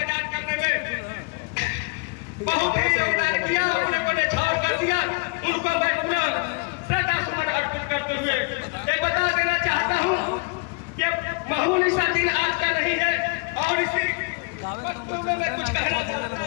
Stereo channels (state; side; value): quieter; right; 32.0 dB